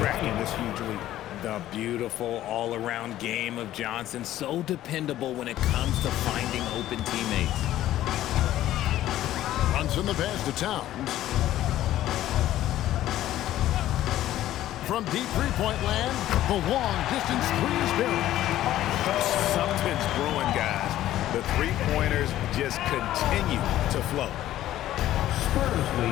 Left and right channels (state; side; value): quieter; right; 13.6 dB